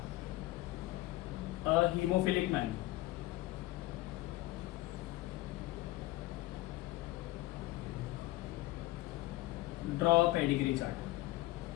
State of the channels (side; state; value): right; quieter; 18.4 dB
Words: haemophilic man. Draw pedigree